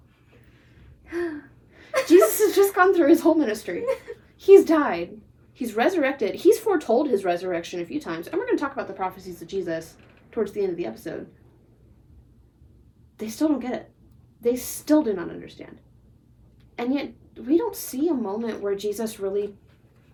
Jesus has just gone through his whole ministry. He's died. He's resurrected. He's foretold his resurrection a few times. And we're going to talk about the prophecies of Jesus towards the end of the episode. They still don't get it. They still do not understand. And yet, we don't see a moment where Jesus really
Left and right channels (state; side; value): identical; both; correlation 1.00